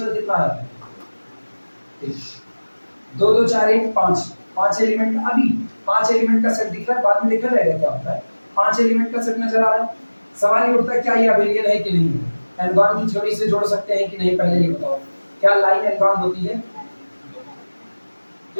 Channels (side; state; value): both; inverted; correlation -1.00